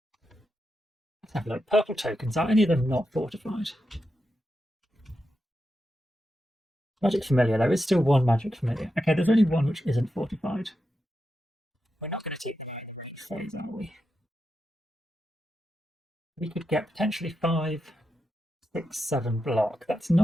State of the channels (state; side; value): normal; both; correlation 0.88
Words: Let's have a look. Purple tokens, are any of them not fortified? Magic Familiar, there is still 1 Magic Familiar. Okay, there's only 1 which isn't fortified. We're not going to take the enemy phase, are we? We could get potentially 5, 6, 7 block. That's